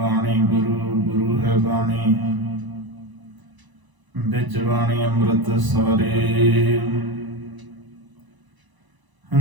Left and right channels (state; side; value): late; left; 1.0 ms